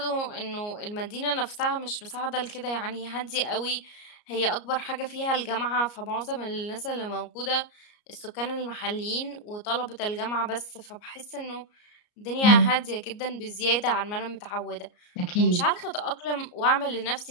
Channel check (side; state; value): right; late; 34 ms